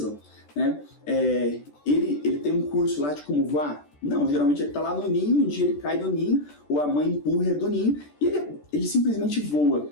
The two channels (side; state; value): right; late; 14 ms